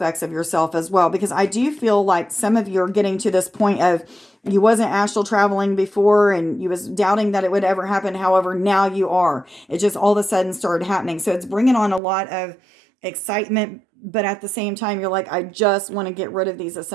of yourself as well, because I do feel like some of you are getting to this point of you wasn't astral traveling before and you was doubting that it would ever happen. However, now you are. It just all of a sudden started happening. So it's bringing on a lot of excitement, but at the same time, you're like, I just want to get rid of these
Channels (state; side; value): drops out; left; at 12.0 s